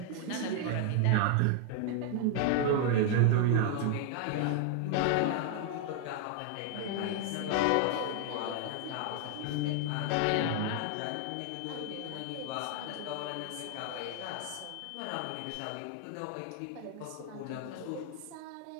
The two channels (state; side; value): different; both; correlation 0.00